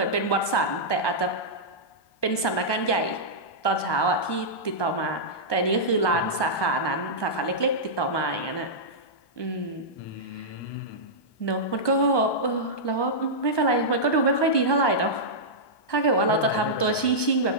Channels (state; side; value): late; right; 1.2 ms